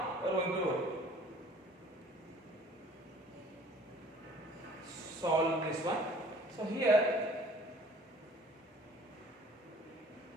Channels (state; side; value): normal; both; correlation 0.52